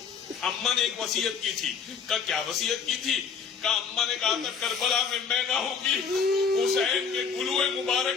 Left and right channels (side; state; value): right; quieter; 6.3 dB